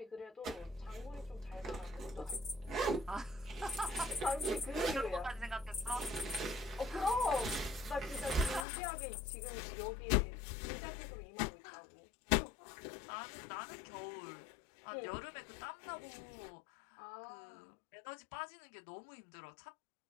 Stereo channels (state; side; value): drops out; right; at 8.7 s